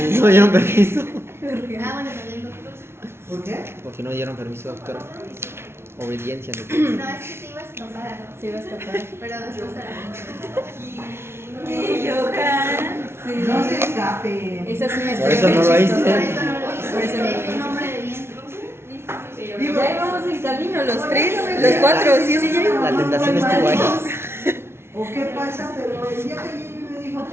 no dieron permiso. Ah, bueno, también doctor. ¿Por qué? Porque no dieron permiso, doctora. Obediencia. No, es que se iba a escapar, Se iba a escapar. pero después ¿Qué, Johan? Sí. No se escape. Esa es una Por historia eso no muy lo chistosa. por hice. eso no lo hizo. Por eso no lo Es hizo. un hombre de bien. Ya íbamos en camino, los tres, los cuatro, sí, sí, ya íbamos. La tentación estuvo ahí. ¿O qué pasa? Pero el día que ella me dijo,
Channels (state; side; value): late; left; 0.12 ms